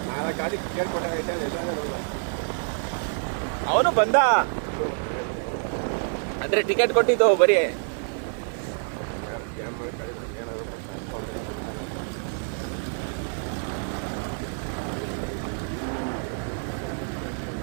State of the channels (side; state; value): left; silent; 56 dB below the other